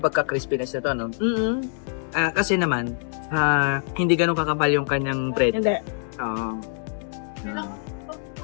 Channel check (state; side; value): silent; right; 62 dB below the other